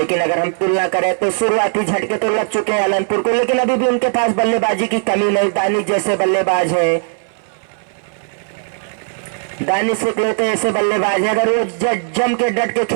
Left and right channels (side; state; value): left; silent; 64 dB below the other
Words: अगर हम तुलना करें तो शुरुआती झटके तो लग चुके हैं आलमपुर को, लेकिन अभी भी उनके पास बल्लेबाजी की कमी नहीं। दानिश जैसे बल्लेबाज है, दानिश इकलौते ऐसे बल्लेबाज है, अगर वो जम के डट के